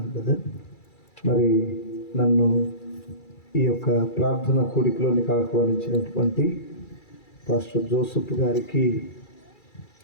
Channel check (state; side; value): late; right; 2.3 ms